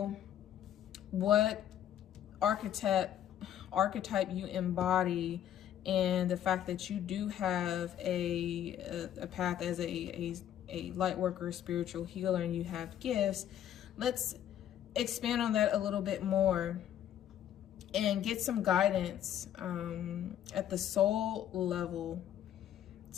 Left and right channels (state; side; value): quieter; right; 10.8 dB